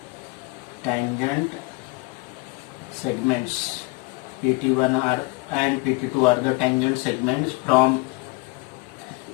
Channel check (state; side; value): quieter; right; 25.7 dB